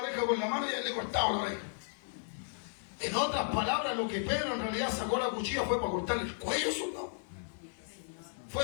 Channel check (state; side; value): silent; right; 55 dB below the other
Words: con la mano y él le cortaba la oreja. En otras palabras, lo que Pedro en realidad sacó la cuchilla fue para cortarle el cuello al soldado.